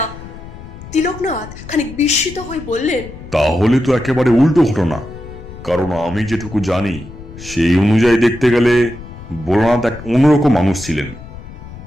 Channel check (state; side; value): noise; left; rumble, 15 dB below the sound